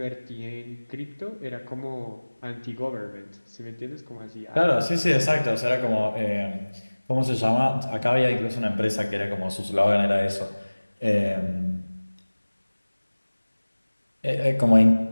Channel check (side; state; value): both; inverted; correlation -1.00